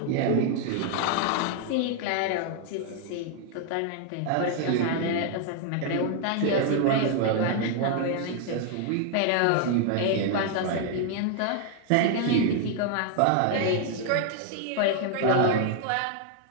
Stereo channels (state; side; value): different; both; correlation 0.00